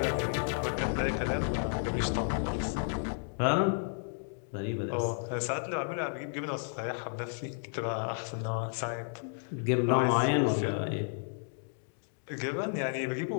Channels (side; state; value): right; silent; digital silence